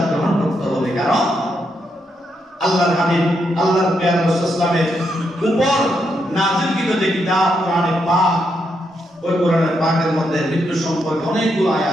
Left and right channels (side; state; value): both; normal; correlation 0.80